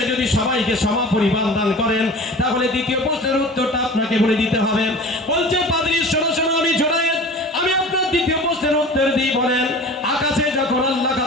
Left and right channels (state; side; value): normal; both; correlation 0.39